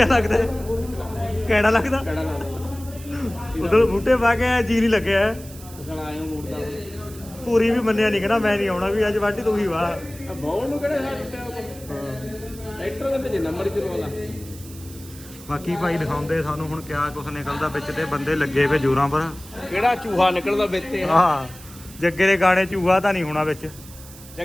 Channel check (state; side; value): noise; right; hiss, 18 dB below the sound